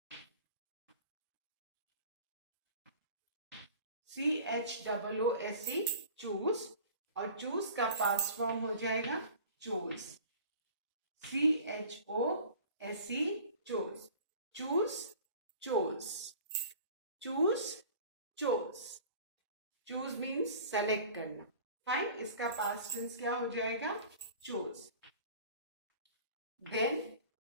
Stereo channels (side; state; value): both; inverted; correlation -0.43